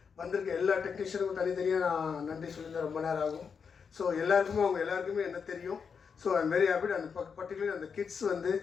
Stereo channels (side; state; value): right; quieter; 6.2 dB